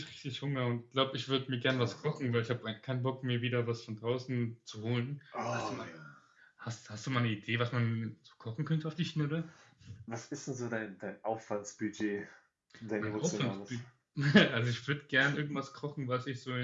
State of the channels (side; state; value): both; identical; correlation 1.00